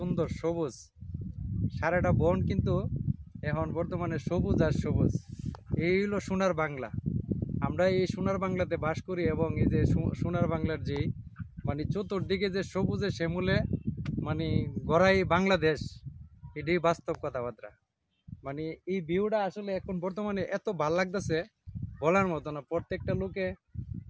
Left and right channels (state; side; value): identical; both; correlation 1.00